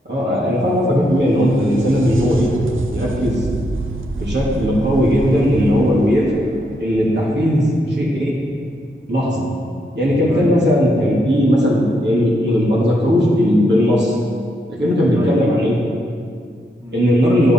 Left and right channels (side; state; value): both; normal; correlation 0.78